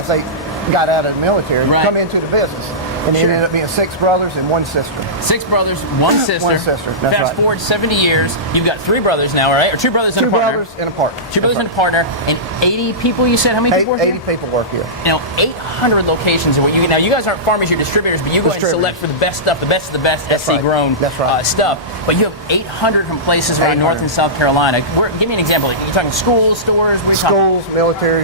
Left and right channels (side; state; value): both; normal; correlation -0.18